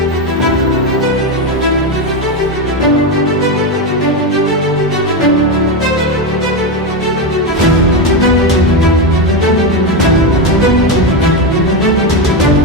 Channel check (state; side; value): normal; both; correlation 0.11